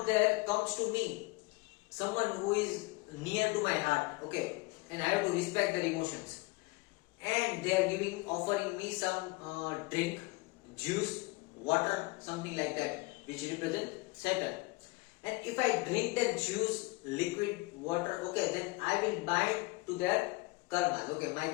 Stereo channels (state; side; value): quieter; right; 24.4 dB